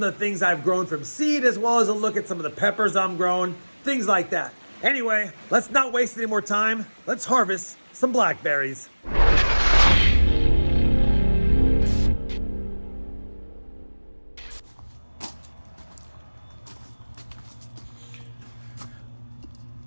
of the things I've grown from seed, as well as a look at some of the peppers I'm growing, things like that. Anyway, let's not waste any more time. Let's harvest some blackberries.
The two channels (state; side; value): inverted; both; correlation -1.00